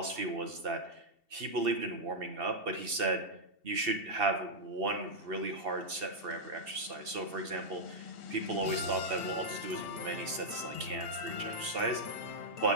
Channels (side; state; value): left; late; 2.7 ms